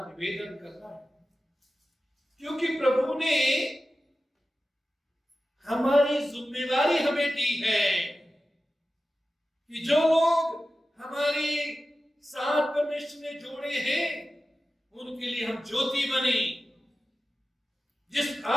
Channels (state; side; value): normal; both; correlation 0.94